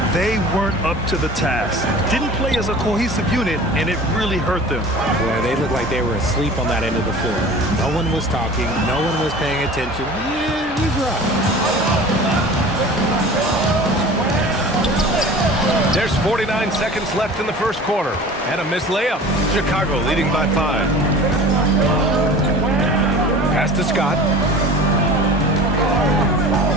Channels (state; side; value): normal; both; correlation 0.40